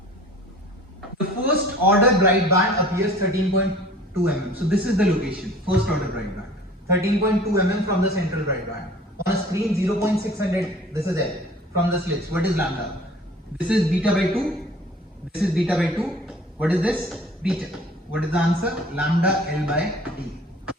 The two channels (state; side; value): normal; both; correlation 0.47